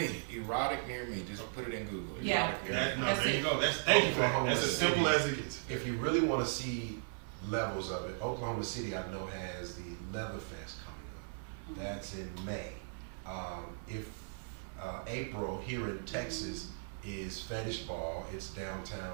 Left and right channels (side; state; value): left; silent; 53 dB below the other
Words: Just put it in Google. Yeah. Erotic near me. There you go. Thank you for that. That's as simple as it gets. If you really want to see levels of it, Oklahoma City, I know, has the Leather Fest coming up. That's in May. If April here in Texas is Fetish Ball, it's